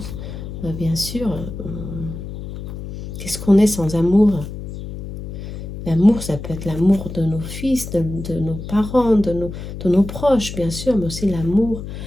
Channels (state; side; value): noise; left; hum, 9 dB below the sound